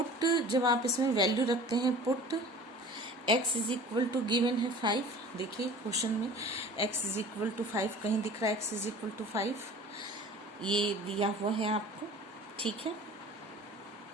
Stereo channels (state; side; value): normal; both; correlation 0.43